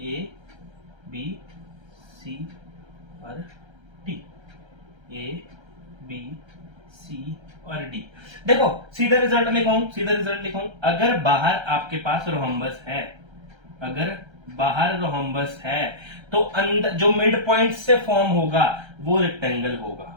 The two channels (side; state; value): left; late; 1.3 ms